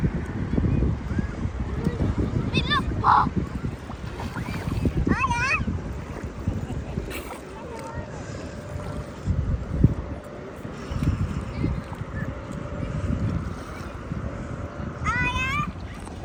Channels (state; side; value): identical; both; correlation 1.00